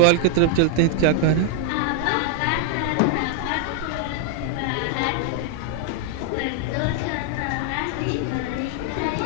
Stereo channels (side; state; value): both; different; correlation 0.00